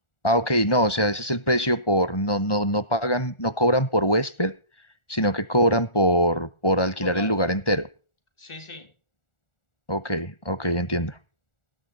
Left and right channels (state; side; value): late; right; 1.4 ms